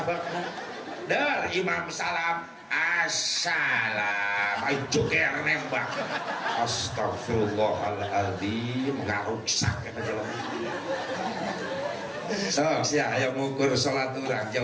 dar imam salam assalam ay joger nembak astagfirullahaladzim ngaruksak eta jelema sok sia aya ngukur salat urang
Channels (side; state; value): both; identical; correlation 1.00